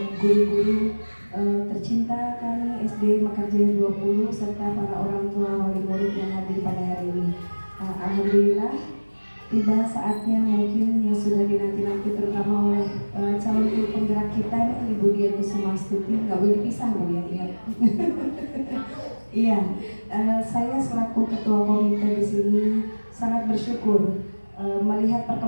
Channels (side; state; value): both; inverted; correlation -1.00